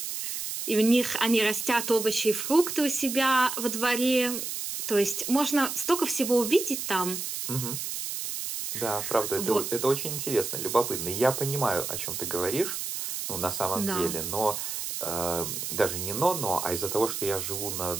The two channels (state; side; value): noise; right; hiss, 4 dB below the sound